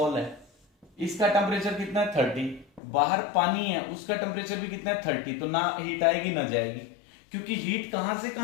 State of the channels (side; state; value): right; drops out; at 2.8 s